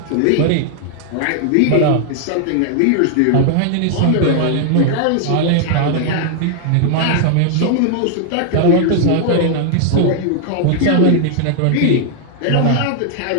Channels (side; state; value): both; different; correlation 0.00